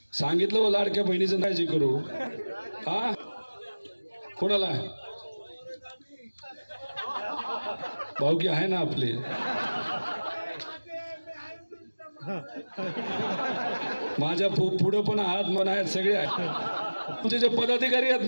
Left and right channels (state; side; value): inverted; both; correlation -1.00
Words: सांगितलं लाडक्या बहिणीचं काळजी करू हा कोणाला भाऊकी आहे ना आपले माझ्या पुढे पण आहात मन आहेत सगळे आहेत तुमचे जे पदाधिकारी आहेत